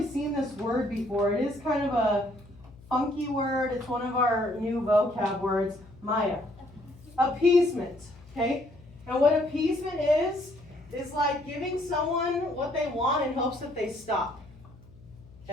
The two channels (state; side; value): noise; left; hum, 23 dB below the sound